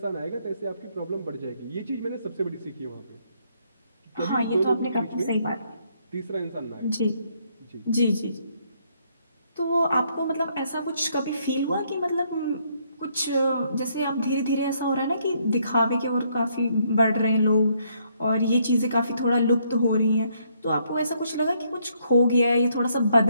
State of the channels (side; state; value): both; inverted; correlation -0.71